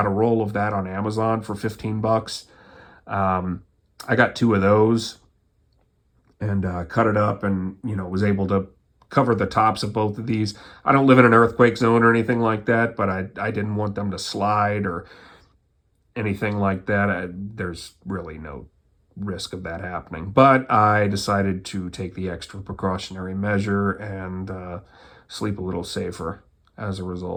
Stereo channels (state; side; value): identical; both; correlation 1.00